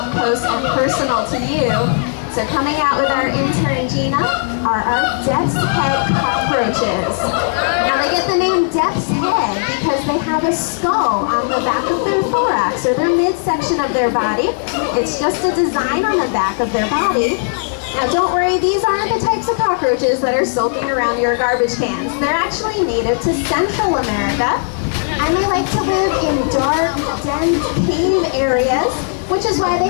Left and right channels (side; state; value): right; silent; 62 dB below the other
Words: close and personal to you. So coming out with our intern Gina are our death's head cockroaches. Now they get the name death's head because they have a skull on the back of their thorax, or their midsection of their body. It's just a design on the back of their body. Now don't worry, these aren't the types of cockroaches that are sulking around your garbage cans. They're actually native to Central America, and they like to live in dark, dense cave areas, which is why they